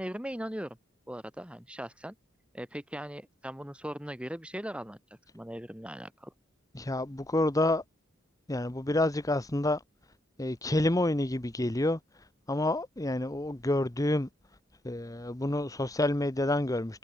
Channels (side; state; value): both; normal; correlation 0.78